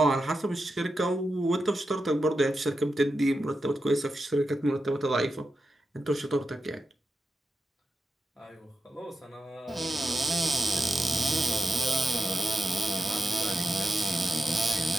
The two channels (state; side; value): normal; both; correlation 0.88